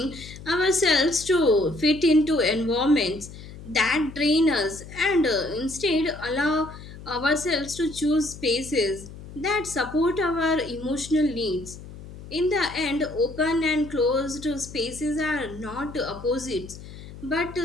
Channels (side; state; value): left; noise; hum, 15 dB below the sound